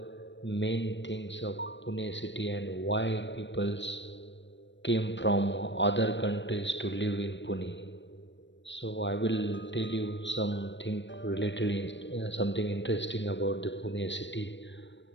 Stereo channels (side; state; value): right; late; 0.53 ms